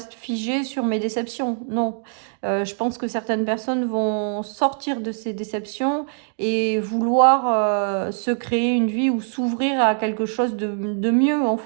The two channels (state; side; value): silent; left; 64 dB below the other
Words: figé sur mes déceptions. Non. Je pense que certaines personnes vont sortir de ces déceptions et vouloir se créer une vie ou s'ouvrir à quelque chose de mieux, en